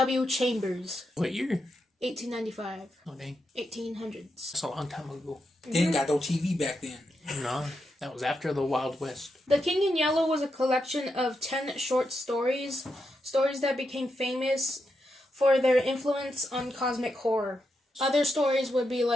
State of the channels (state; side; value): normal; both; correlation 0.84